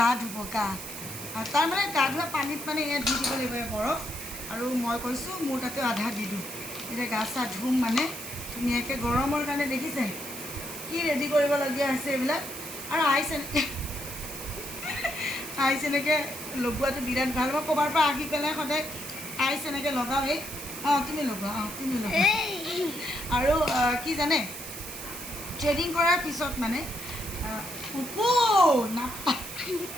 ধুব তাৰ মানে গা ধোৱা পানীত মানে এয়া ধুই দিব লাগিব বৰফ আৰু মই কৈছোঁ মোৰ তাতে আধা দি দিওঁ এতিয়া গা চা ধুম মানে ধুনীয়াকৈ গৰমৰ কাৰণে দেখিছে কি ৰেডি কৰিবলগীয়া হৈছে এইবিলাক আৰু আইচ এনেকৈ লগোৱাটো বিৰাট ভাল মই ক'ৰবাৰ পৰা আহি পেলাই সদায় আইচ এনেকৈ লগাওঁ তুমি লগোৱা আৰু কি জানে থ্ৰেডিং কৰাৰ পিছত মানে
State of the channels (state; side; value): noise; right; hiss, 9 dB below the sound